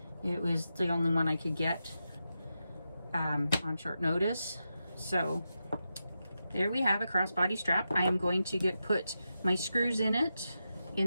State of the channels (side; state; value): both; inverted; correlation -0.88